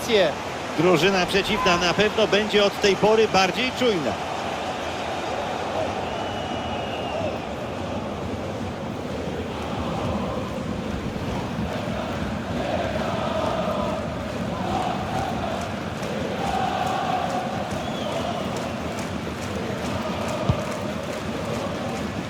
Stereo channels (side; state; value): both; identical; correlation 1.00